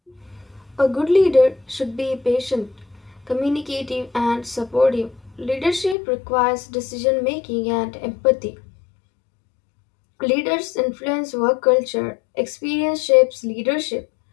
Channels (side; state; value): right; drops out; at 6.0 s